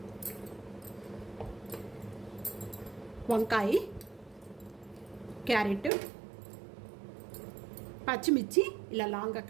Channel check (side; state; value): left; drops out; at 5.9 s